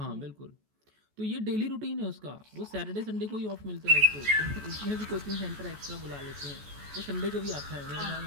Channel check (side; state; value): left; late; 14 ms